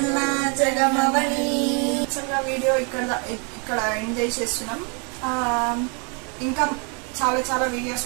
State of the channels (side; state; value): left; quieter; 36.3 dB